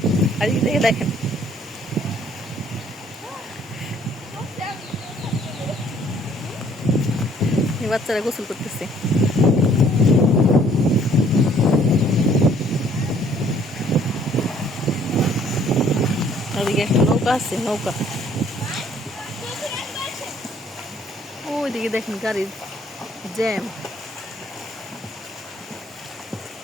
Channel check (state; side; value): normal; both; correlation 0.60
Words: আর এই দিকে দেখেন এই বাচ্চারা গোসল করতেছে। ওইদিকে একটা নৌকা আছে, নৌকা। ওইদিকে দেখেন গাড়ির জ্যাম।